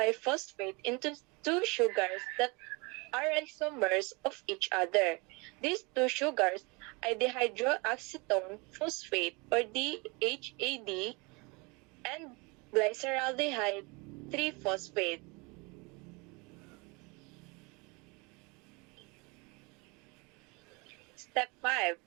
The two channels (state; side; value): quieter; left; 28.3 dB